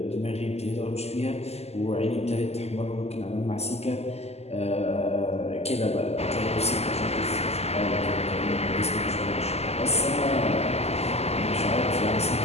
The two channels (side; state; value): right; late; 0.30 ms